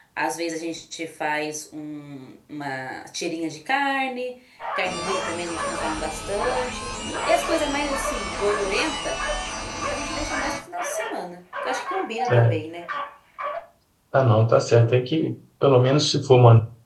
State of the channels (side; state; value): both; identical; correlation 1.00